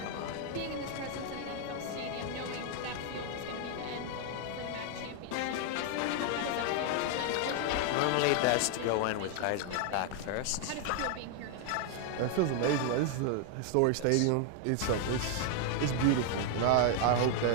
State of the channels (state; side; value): different; both; correlation 0.00